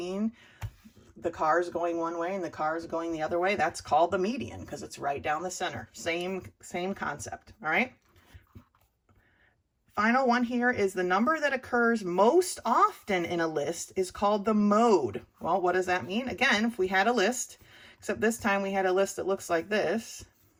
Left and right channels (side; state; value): both; identical; correlation 1.00